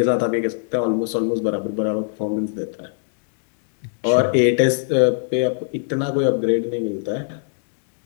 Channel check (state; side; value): silent; right; digital silence